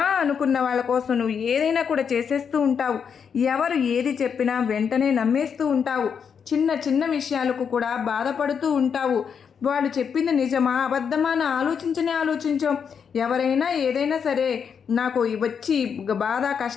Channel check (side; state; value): right; quieter; 6.9 dB